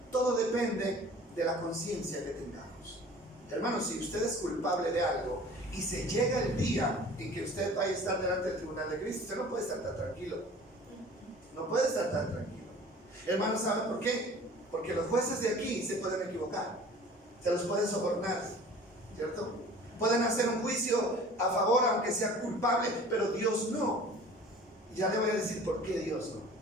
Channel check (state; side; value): normal; both; correlation 0.45